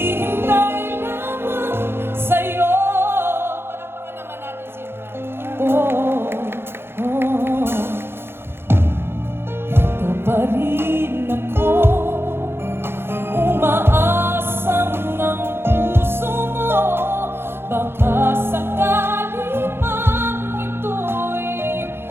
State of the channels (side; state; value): left; late; 0.11 ms